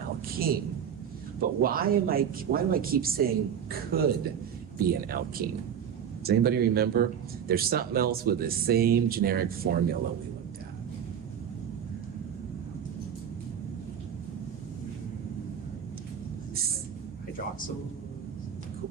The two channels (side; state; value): left; quieter; 8.4 dB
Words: But why do I keep saying could be an alkene? Does anybody remember? There's something else with the same generic formula we looked at.